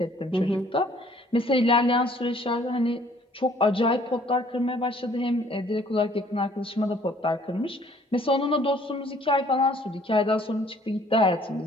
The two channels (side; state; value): both; normal; correlation 0.59